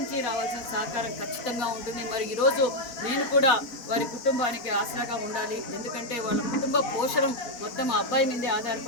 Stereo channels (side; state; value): right; late; 4.2 ms